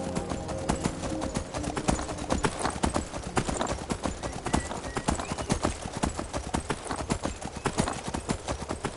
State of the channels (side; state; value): both; identical; correlation 1.00